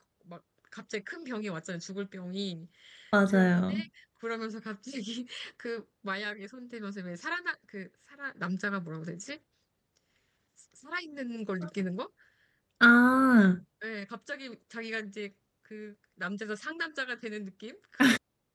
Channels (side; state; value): both; identical; correlation 1.00